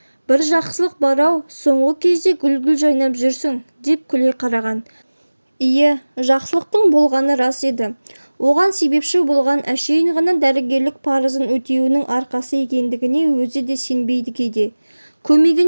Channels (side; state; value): both; inverted; correlation -1.00